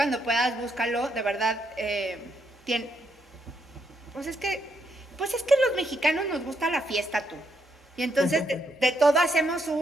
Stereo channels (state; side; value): normal; both; correlation 0.77